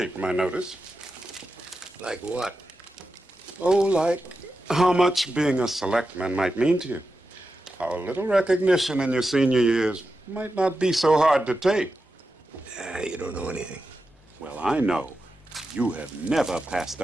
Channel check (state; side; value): normal; both; correlation 0.90